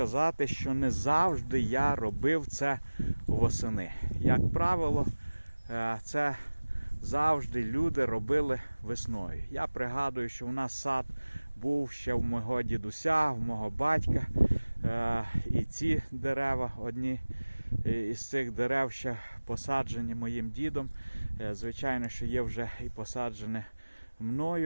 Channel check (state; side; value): inverted; both; correlation -1.00